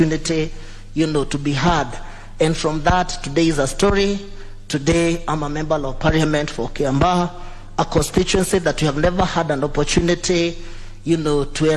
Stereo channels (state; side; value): identical; both; correlation 1.00